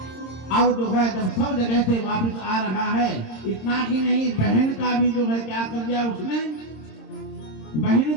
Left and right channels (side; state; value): right; late; 26 ms